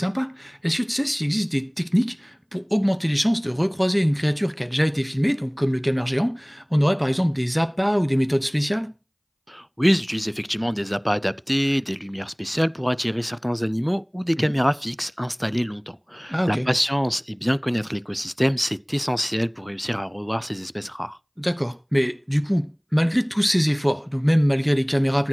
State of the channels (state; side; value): identical; both; correlation 1.00